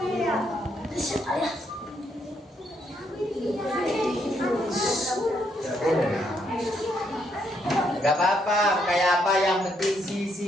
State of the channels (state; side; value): normal; both; correlation 0.74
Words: Gak apa-apa, kayak apa, yang penting